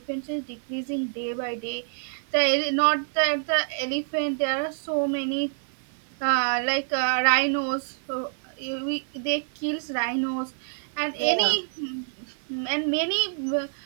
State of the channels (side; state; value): left; silent; digital silence